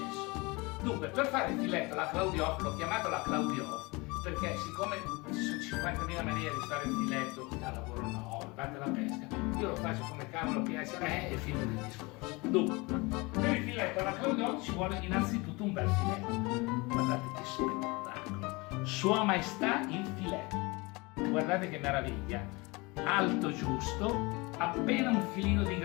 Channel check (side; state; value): right; quieter; 25.4 dB